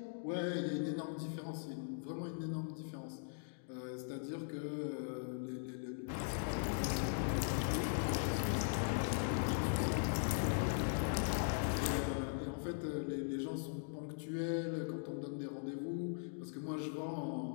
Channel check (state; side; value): silent; right; digital silence